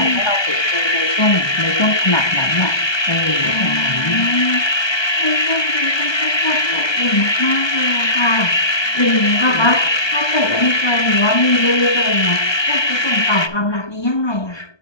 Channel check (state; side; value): late; right; 1.2 ms